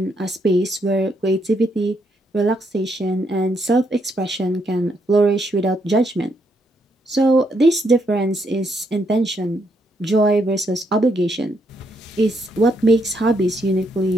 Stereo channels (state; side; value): normal; both; correlation 0.76